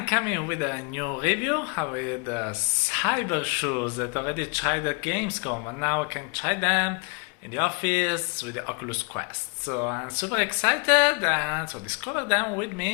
coming with a new review with Cybershoes that already tried at Gamescom, and now I can try them in the office with the Oculus Quest. So I'm super excited, and so discover them with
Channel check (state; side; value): quieter; right; 35.3 dB